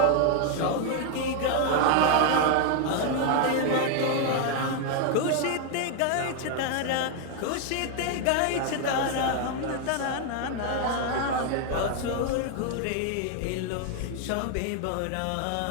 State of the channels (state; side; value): different; both; correlation 0.00